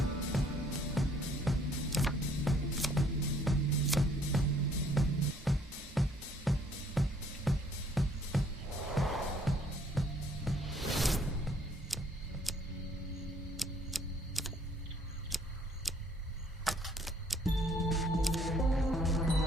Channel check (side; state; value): both; normal; correlation 0.62